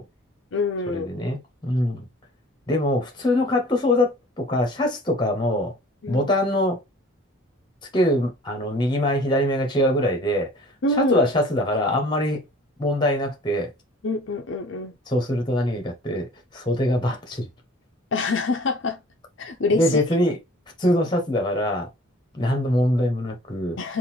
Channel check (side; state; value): both; normal; correlation 0.48